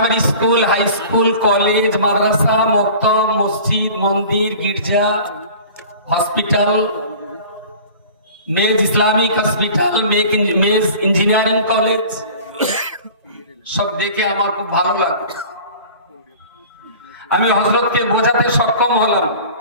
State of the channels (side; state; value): both; inverted; correlation -0.42